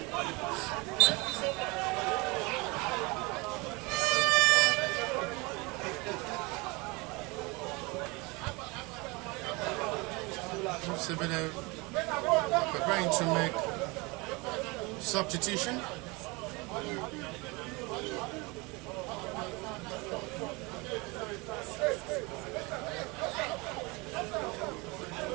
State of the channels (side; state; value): left; quieter; 26.1 dB